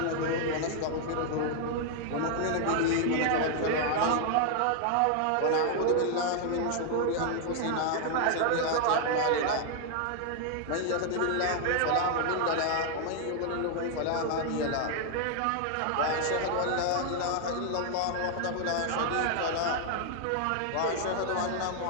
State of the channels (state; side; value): different; both; correlation 0.00